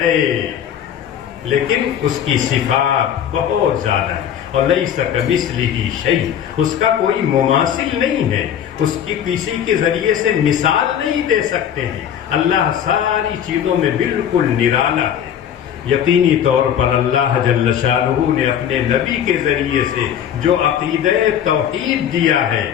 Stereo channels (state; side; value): quieter; right; 9.4 dB